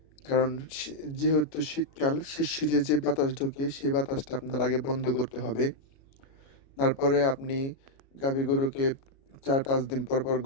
কারণ যেহেতু শীতকাল, শিরশিরে যে বাতাস ঢোকে সেই বাতাসটা আপনার আগে বন্ধ করতে হবে। তারপরে আপনি গাভী গরুকে 4-5 দিন পর পর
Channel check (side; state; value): right; late; 37 ms